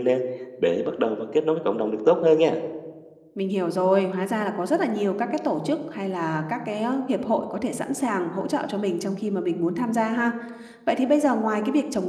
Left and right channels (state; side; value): identical; both; correlation 1.00